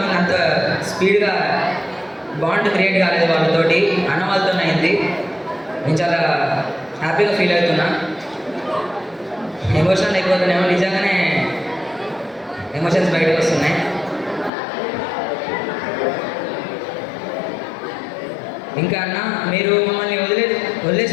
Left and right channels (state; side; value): drops out; right; at 14.5 s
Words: అంత స్పీడ్గా బాండ్ క్రియేట్ కాలేదు వాళ్ళతోటి, అన్న వాళ్ళతో అయింది. నేను చాలా హ్యాపీగా ఫీల్ అవుతున్నా. ఎమోషనల్ అయిపోతున్నామో, నిజంగానే ఎమోషన్స్ బయటకు వస్తున్నాయి. ఇంకా అన్న, మీరు మమ్మల్ని